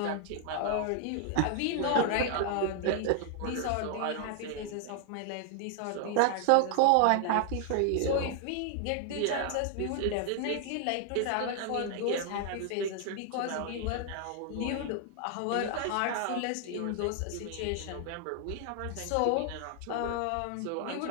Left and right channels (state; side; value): different; both; correlation 0.00